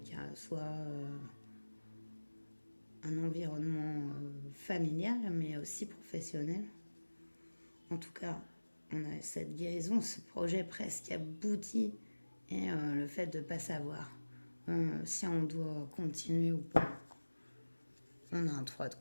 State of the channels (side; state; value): both; inverted; correlation -1.00